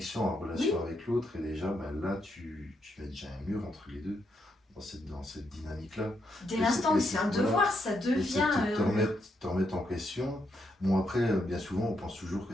en relation avec l'autre, et déjà, là, tu mets déjà un mur entre les deux, dans cette dynamique-là. Dès l'instant où c'est un devoir, ça devient... te remettre en question. Bon, après, bien souvent, on pense toujours que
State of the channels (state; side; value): normal; both; correlation 0.79